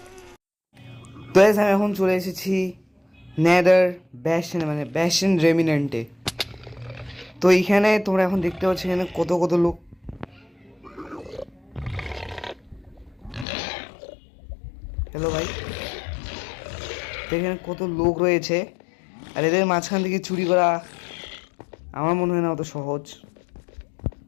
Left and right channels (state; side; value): drops out; right; at 13.5 s